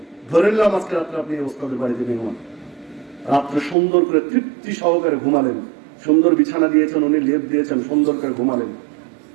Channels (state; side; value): drops out; left; at 3.8 s